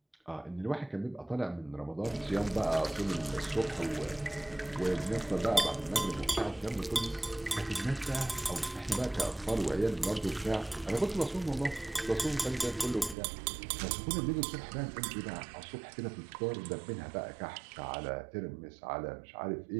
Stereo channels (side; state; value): left; drops out; at 13.2 s